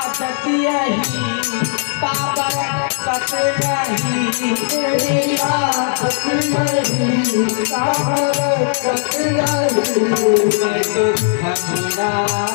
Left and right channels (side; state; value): right; silent; digital silence